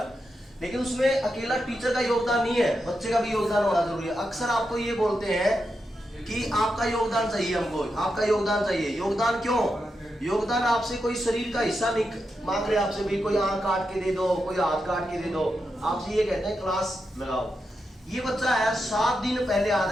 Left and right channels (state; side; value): normal; both; correlation 0.86